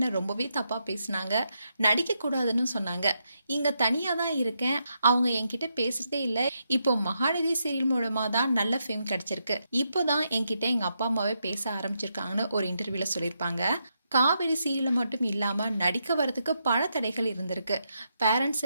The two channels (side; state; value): both; inverted; correlation -0.82